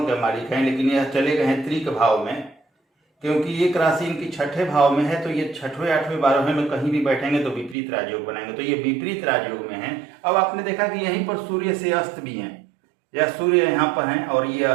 मालिक हैं, लेकिन यह चले गए हैं त्रिक भाव में, क्योंकि एक राशि इनकी छठे भाव में है, तो ये 6वें, 8वें, 12वें में कहीं भी बैठेंगे तो विपरीत राजयोग बनाएंगे, तो ये विपरीत राजयोग में है। अब आपने देखा कि यहीं पर सूर्य से अस्त भी हैं, या सूर्य यहाँ पर हैं और ये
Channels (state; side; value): drops out; left; at 7.8 s